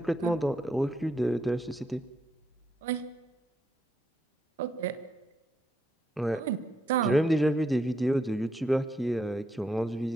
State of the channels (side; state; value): both; normal; correlation 0.78